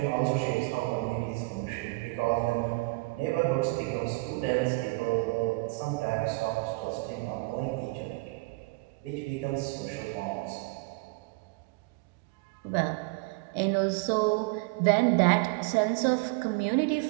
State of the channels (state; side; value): quieter; left; 25.6 dB